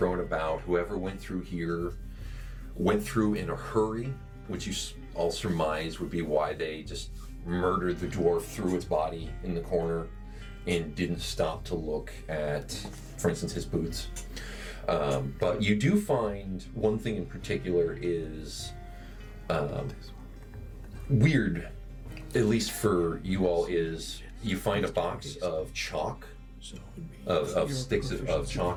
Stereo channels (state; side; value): identical; both; correlation 1.00